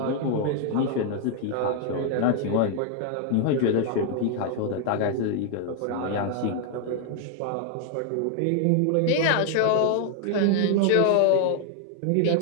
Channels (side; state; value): both; different; correlation 0.00